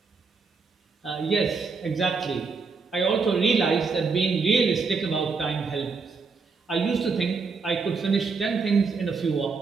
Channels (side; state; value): left; quieter; 4.7 dB